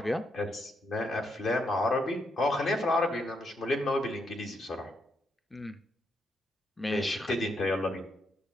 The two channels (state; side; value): normal; both; correlation 0.78